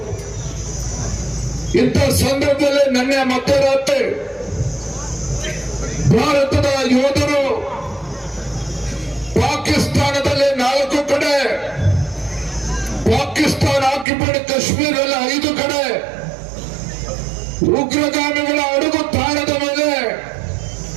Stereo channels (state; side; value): drops out; left; at 14.1 s